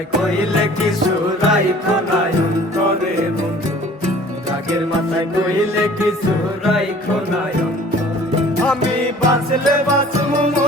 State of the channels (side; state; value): both; normal; correlation 0.49